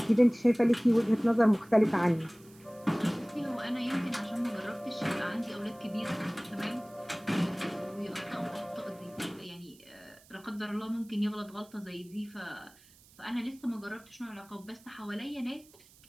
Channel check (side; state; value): right; noise; hiss, 26 dB below the sound